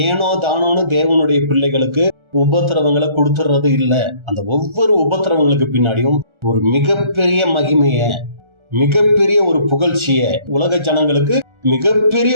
ஏனோ தானோன்னு தேவனுடைய பிள்ளைகளுக்கு உபத்திரவங்களை கொடுத்துறது இல்ல. அந்த ஒவ்வொரு உபத்திரவங்களுக்கு பின்னாடியும் ஒரு மிகப்பெரிய மகிமைய, மிகப்பெரிய ஒரு புகழ்ச்சிய, உலக ஜனங்களுக்கு மிகப்பெரிய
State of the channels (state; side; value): late; left; 1.3 ms